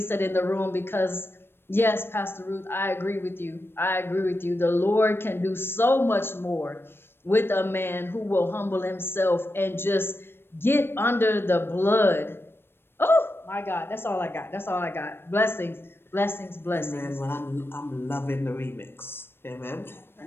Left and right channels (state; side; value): late; right; 0.11 ms